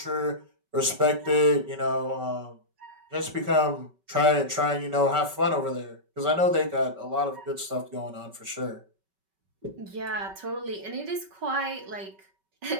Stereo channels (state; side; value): late; left; 5.2 ms